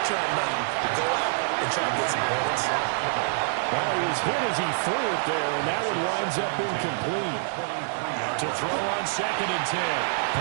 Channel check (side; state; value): left; silent; digital silence